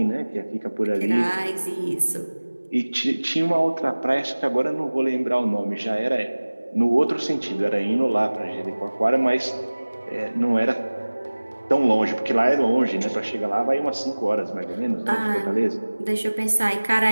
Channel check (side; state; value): both; inverted; correlation -1.00